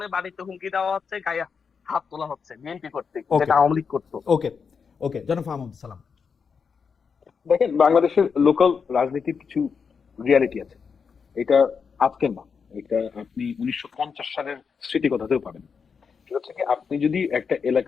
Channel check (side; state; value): right; quieter; 5.9 dB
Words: বাড়িতে হুমকি দেওয়া হচ্ছে, গায়ে হাত তোলা হচ্ছে বিএনপি কর্তৃক, Okay. যেটা আওয়ামী লীগ করতো। ওকে ওকে, জনাব ফাহমুদ সালাম। দেখেন, বাংলাদেশের লোকাল রাজনীতির কিছু রিয়ালিটি আছে। এটা আজকের না, এটা আপনি 1950 সালের স্মৃতি কথাতেও পাবেন। সেটা হচ্ছে কি, আপনি যদি একটা